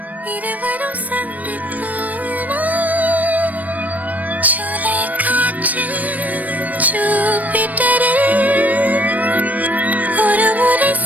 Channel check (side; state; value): left; late; 0.076 ms